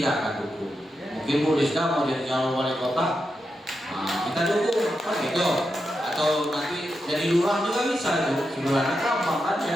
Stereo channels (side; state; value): both; normal; correlation 0.87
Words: akan dukung. Mungkin Bu Rizka mau jadi calon wali kota, kita dukung, kan gitu. Atau nanti jadi lurah juga bisa tuh, sebenarnya gampang kan